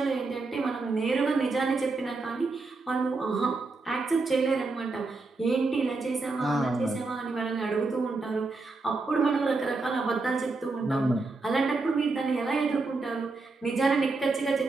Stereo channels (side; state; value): left; quieter; 3.7 dB